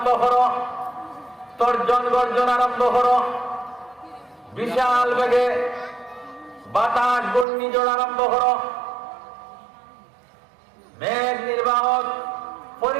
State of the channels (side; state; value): left; drops out; at 7.5 s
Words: করো, তর্জন গর্জন আরম্ভ করো, বিশাল বেগে বাতাস ঘূর্ণিঝড় আরম্ভ করো। মেঘ নির্বাহক